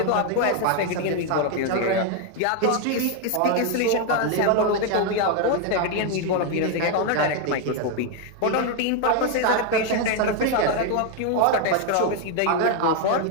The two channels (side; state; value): both; different; correlation 0.01